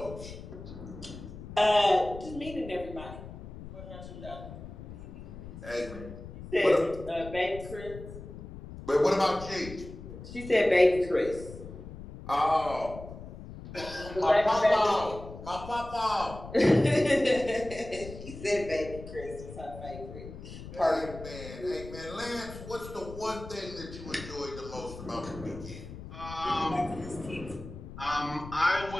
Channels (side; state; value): left; noise; rumble, 13 dB below the sound